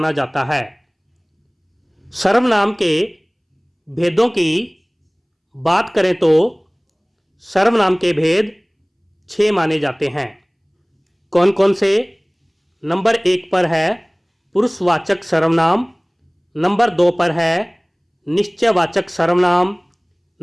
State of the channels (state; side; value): identical; both; correlation 1.00